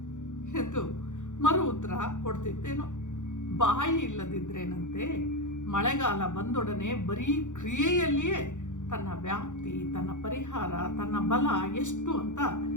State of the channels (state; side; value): late; right; 0.85 ms